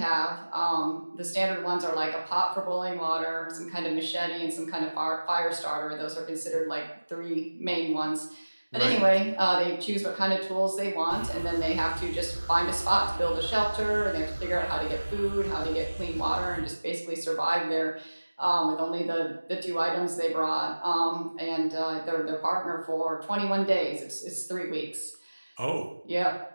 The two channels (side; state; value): both; inverted; correlation -1.00